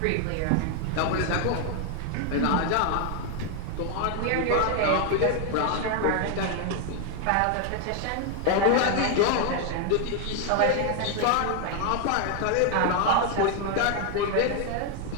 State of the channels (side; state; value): both; different; correlation 0.00